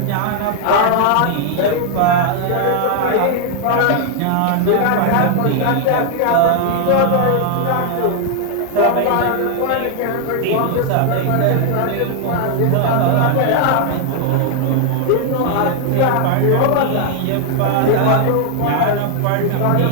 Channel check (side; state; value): both; different; correlation 0.00